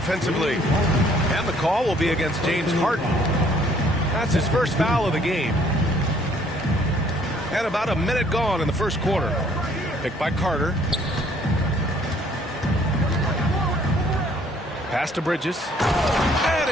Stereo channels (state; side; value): normal; both; correlation 0.61